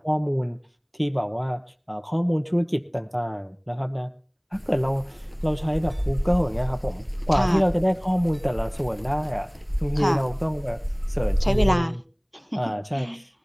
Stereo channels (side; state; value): both; identical; correlation 1.00